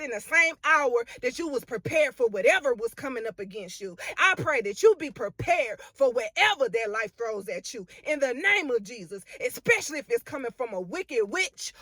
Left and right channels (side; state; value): both; identical; correlation 1.00